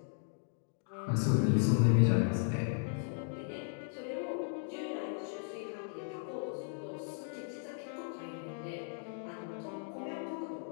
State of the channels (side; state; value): right; silent; digital silence